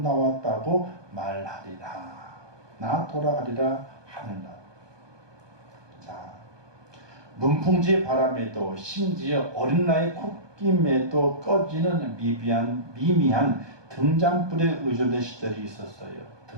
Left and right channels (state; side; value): late; left; 1.2 ms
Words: 말하리라. 나 돌아가리라 하늘나라. 자, 문풍지 바람에도 심지어 어린 나이 콧김에도 꺼지는 미미한 등잔불에 의존된 시절이 있었어요.